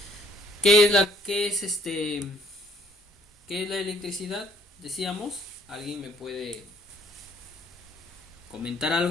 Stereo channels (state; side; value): normal; both; correlation 0.62